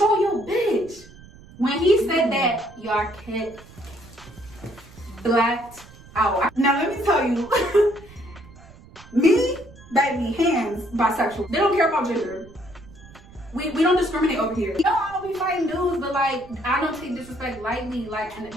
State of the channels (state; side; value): noise; right; rumble, 21 dB below the sound